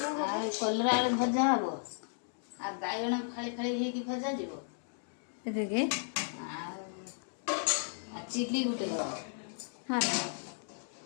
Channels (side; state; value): right; silent; digital silence